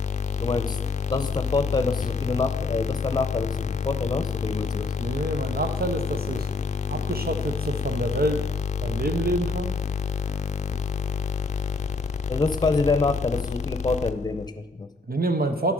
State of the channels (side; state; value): right; quieter; 3.3 dB